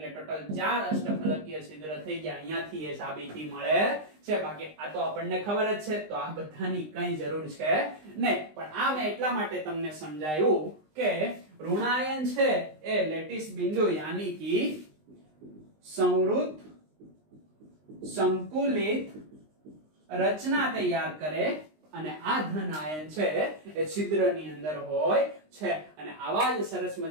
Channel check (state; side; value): late; left; 19 ms